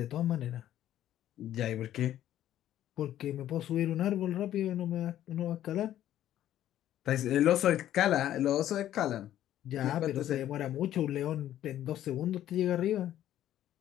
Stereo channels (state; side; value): quieter; right; 12.2 dB